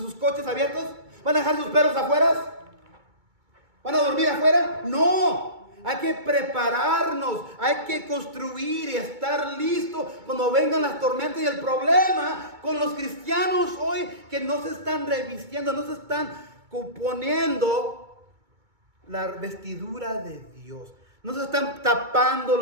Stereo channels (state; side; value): late; left; 2.2 ms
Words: coches abiertos? ¿Van a dejar sus perros afuera? ¿Van a dormir afuera? No. Hay que prepararnos. Hay que construir y estar listos cuando vengan las tormentas. Y el problema con los cristianos hoy, que no se están revistiendo, no se están poniendo la vestidura de Dios. No se están